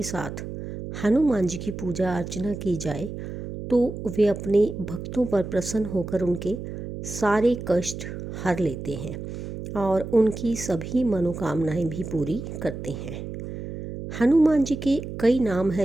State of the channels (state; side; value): noise; right; hum, 8 dB below the sound